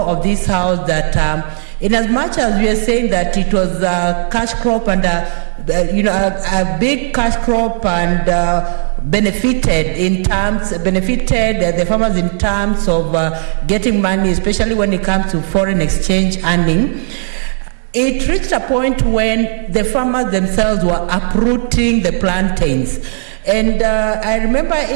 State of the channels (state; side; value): silent; left; digital silence